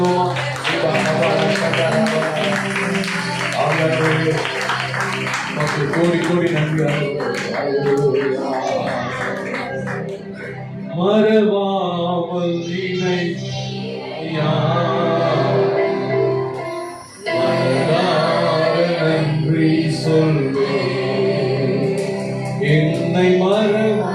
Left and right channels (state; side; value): identical; both; correlation 1.00